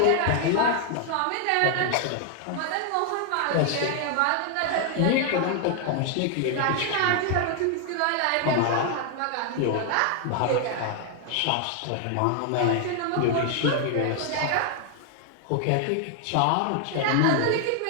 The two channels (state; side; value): different; both; correlation 0.00